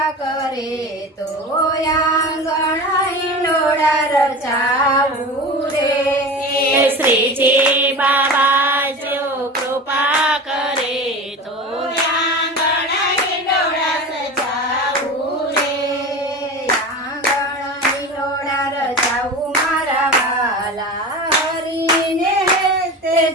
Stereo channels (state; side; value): normal; both; correlation 0.30